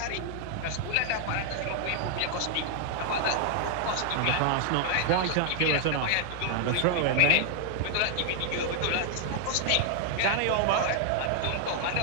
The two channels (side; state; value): both; different; correlation 0.00